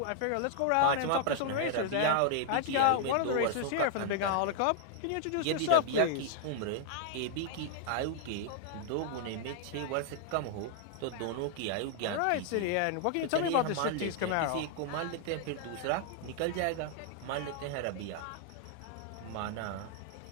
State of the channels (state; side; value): different; both; correlation 0.00